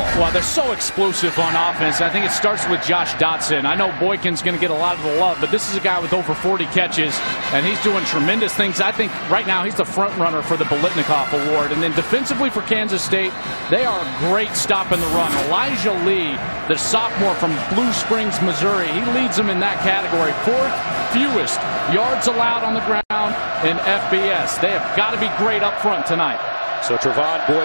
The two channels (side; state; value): both; inverted; correlation -1.00